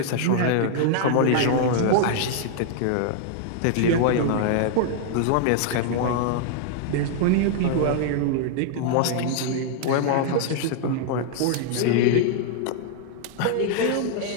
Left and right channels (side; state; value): both; different; correlation -0.01